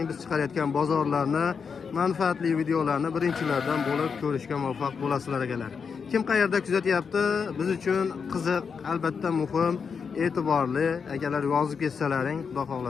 biz chiqarayotgan bozorlarni, manfaatli videolarni birinchilardan bo'lib ko'rishga muvaffaq bo'lasizlar akalar. Kim qayerda kuzatyapti? Biz uchun qiziq, albatta muhim, e'tiborli akalar yozib ketsalaring, xudo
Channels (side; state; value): right; quieter; 6.0 dB